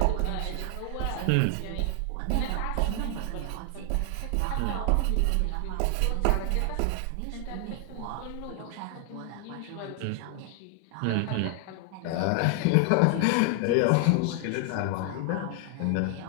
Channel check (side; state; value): both; different; correlation 0.00